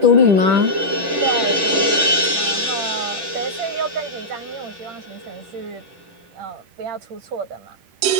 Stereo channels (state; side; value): late; left; 10 ms